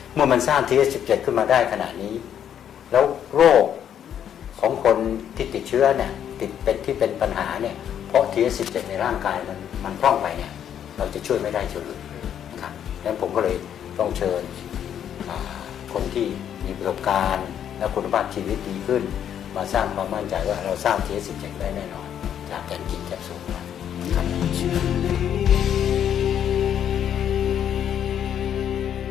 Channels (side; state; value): right; quieter; 9.5 dB